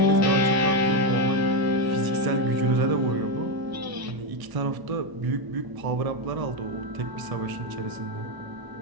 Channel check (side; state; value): left; late; 1.0 ms